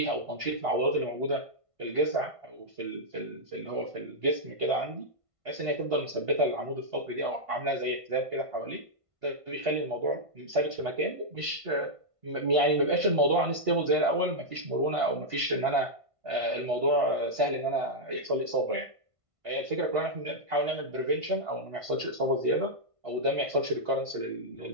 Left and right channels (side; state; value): left; late; 1.5 ms